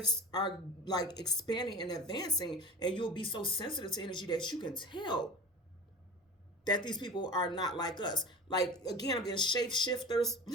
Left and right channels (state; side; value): normal; both; correlation 0.34